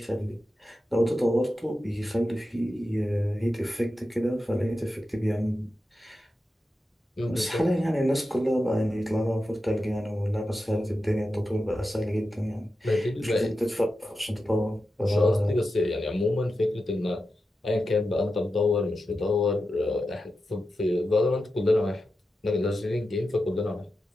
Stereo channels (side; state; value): both; normal; correlation 0.90